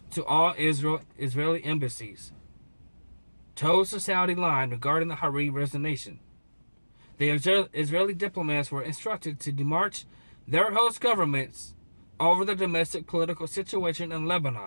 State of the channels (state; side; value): inverted; both; correlation -1.00